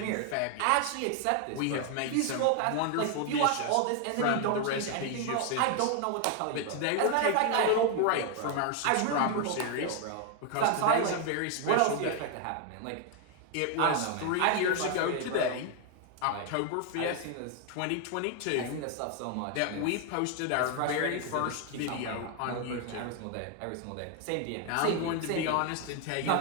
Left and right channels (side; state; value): both; different; correlation 0.01